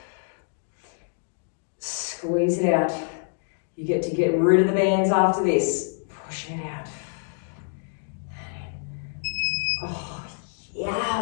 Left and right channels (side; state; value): right; silent; 58 dB below the other